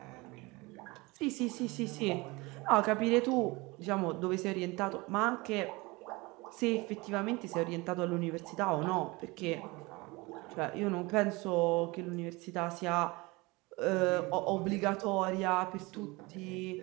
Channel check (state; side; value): quieter; left; 24.1 dB